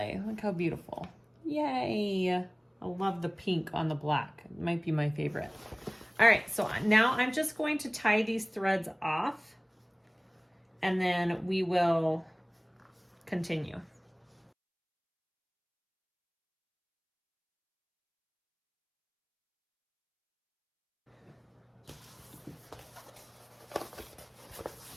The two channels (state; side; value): identical; both; correlation 1.00